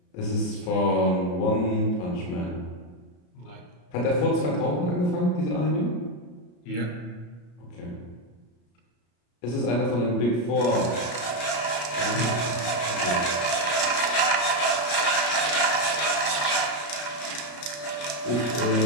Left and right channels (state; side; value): late; right; 33 ms